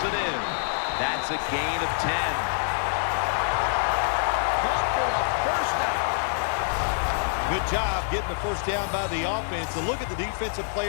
it in. That's a gain of 10. Good job getting the first down by the offense. And look at the defensive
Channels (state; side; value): silent; right; 57 dB below the other